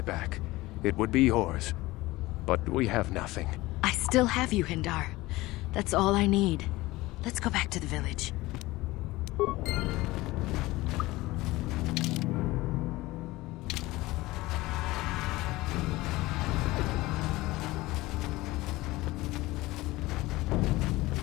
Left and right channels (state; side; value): quieter; right; 19.4 dB